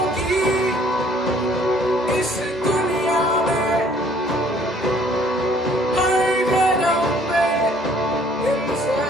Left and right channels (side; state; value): both; normal; correlation 0.59